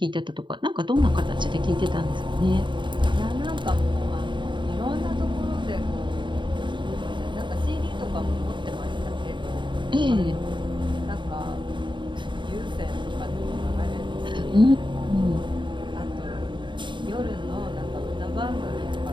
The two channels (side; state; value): left; late; 0.23 ms